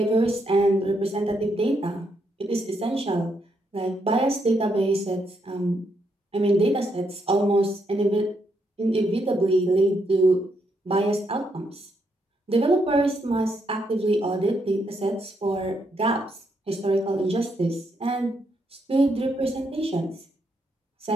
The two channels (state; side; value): normal; both; correlation 0.77